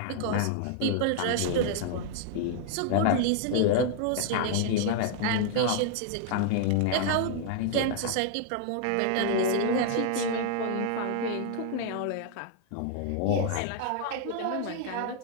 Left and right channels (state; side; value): different; both; correlation 0.00